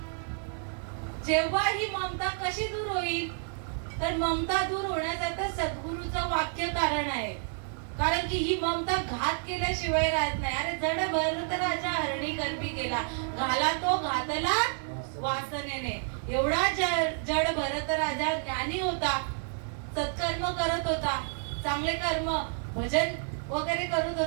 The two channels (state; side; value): silent; left; 55 dB below the other